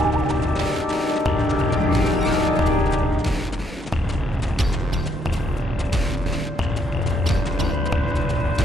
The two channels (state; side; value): normal; both; correlation 0.73